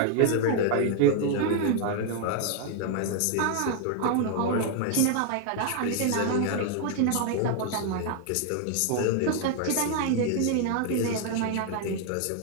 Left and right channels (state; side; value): different; both; correlation 0.00